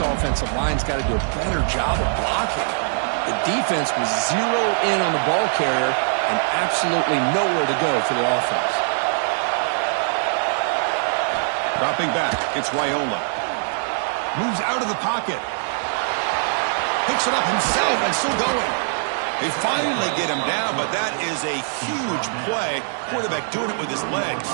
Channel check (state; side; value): silent; left; digital silence